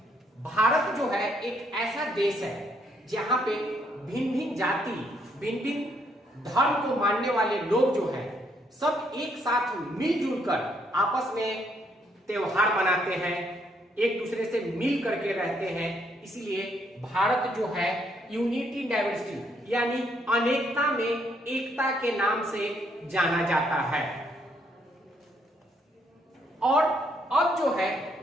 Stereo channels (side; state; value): both; normal; correlation 0.71